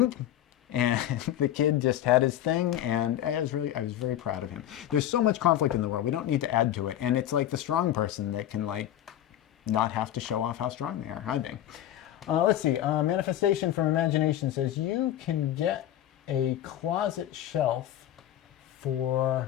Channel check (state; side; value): quieter; right; 12.1 dB